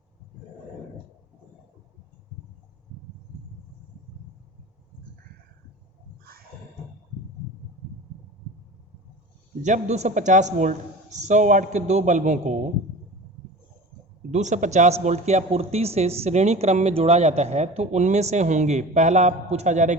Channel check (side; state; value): both; normal; correlation 0.36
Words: जब 250 वोल्ट 100 वाट के दो बल्बों को 250 वोल्ट की आपूर्ति से श्रेणी क्रम में जोड़ा जाता है तो उनमें से होंगे, पहला पूछा जा रहा है